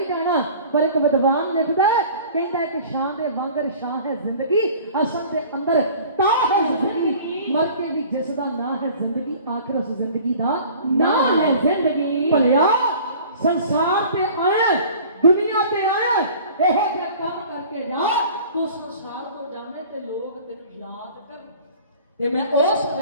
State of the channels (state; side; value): inverted; both; correlation -0.45